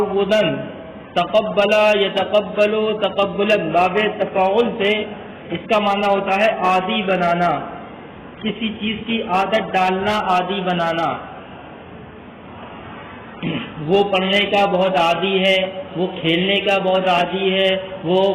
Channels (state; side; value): identical; both; correlation 1.00